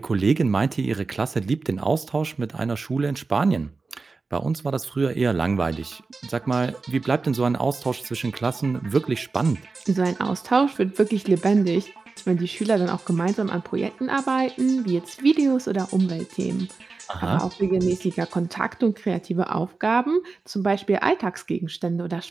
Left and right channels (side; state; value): left; quieter; 4.1 dB